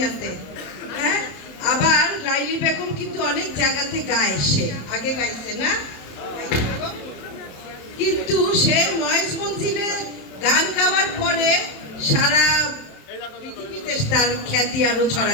হ্যাঁ, আবার লাইলি বেগম কিন্তু অনেক জায়গাতে গায়, সে আগে গাইছে না, কিন্তু সে মহেশ মঞ্জিলে গান গাওয়ার পরে সারা পৃথিবীতে তার খ্যাতি আরো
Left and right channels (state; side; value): late; right; 27 ms